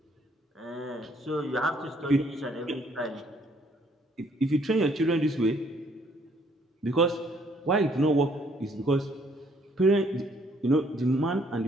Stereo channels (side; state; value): both; normal; correlation 0.65